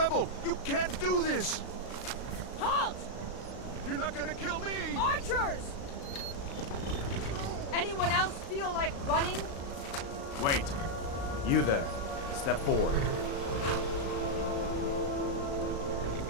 You can't do this. Halt! You're not gonna kill me. Archers! Anyone else feel like running? Wait. You there. Step forward.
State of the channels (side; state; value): right; late; 36 ms